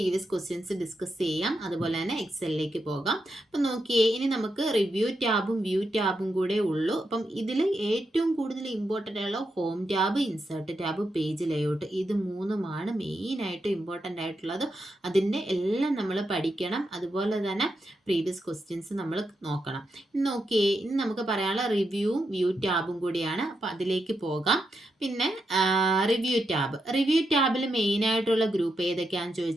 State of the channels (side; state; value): both; normal; correlation 0.84